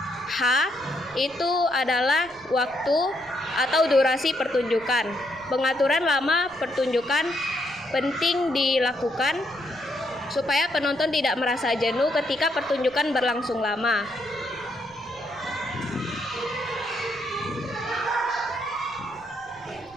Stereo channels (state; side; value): noise; right; rumble, 27 dB below the sound